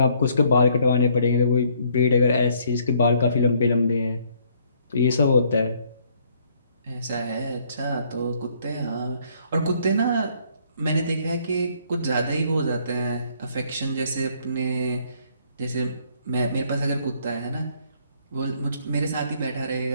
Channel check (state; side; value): inverted; both; correlation -0.65